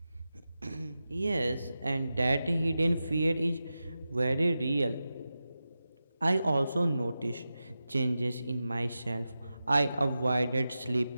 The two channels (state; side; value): inverted; both; correlation -0.92